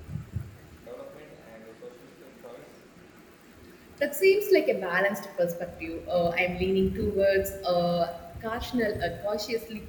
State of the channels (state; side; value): identical; both; correlation 1.00